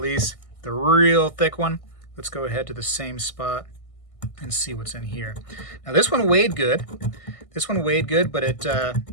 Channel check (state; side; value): late; right; 1.6 ms